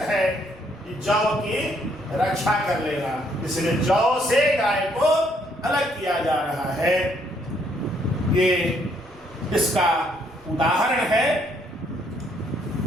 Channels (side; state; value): right; noise; rumble, 27 dB below the sound